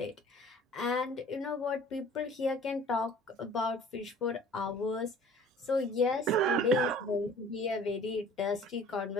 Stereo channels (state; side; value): normal; both; correlation 0.48